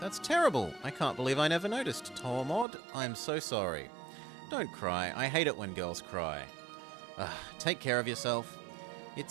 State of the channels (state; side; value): drops out; left; at 2.7 s